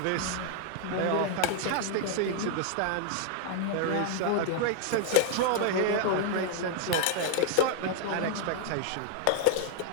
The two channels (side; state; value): both; different; correlation 0.00